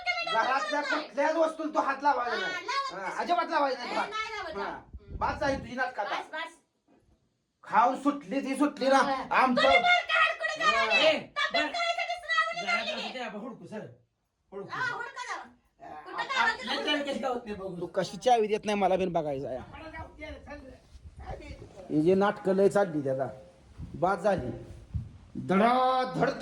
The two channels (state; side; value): identical; both; correlation 1.00